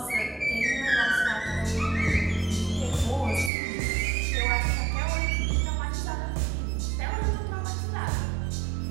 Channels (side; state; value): left; drops out; at 3.5 s